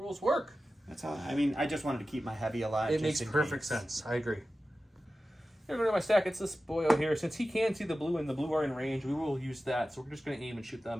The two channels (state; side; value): normal; both; correlation 0.94